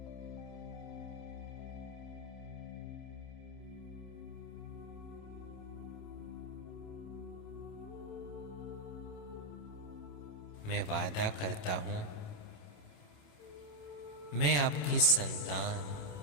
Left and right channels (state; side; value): late; right; 27 ms